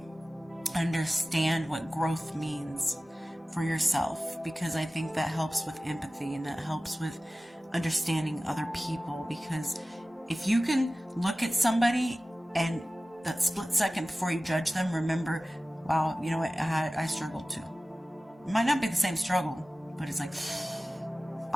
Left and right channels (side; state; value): both; normal; correlation 0.96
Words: understand what growth means for yourself, because I think that helps with empathy and that helps with understanding other people. Because if you can look at somebody and that split second before you judge them, remember, wow, you know what, I struggled too. It might not be the same struggle, but it's like,